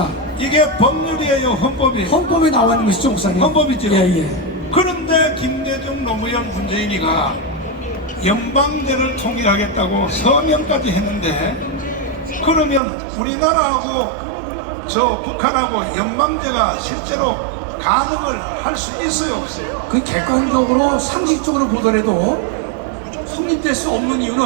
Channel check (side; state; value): left; drops out; at 12.8 s